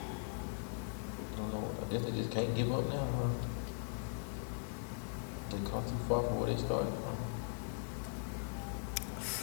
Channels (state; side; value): silent; right; 51 dB below the other